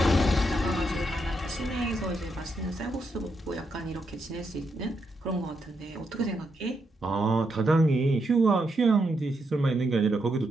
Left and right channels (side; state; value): both; normal; correlation 0.81